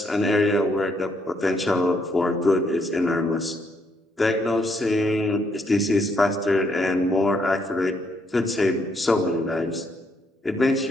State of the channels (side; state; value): both; normal; correlation 0.73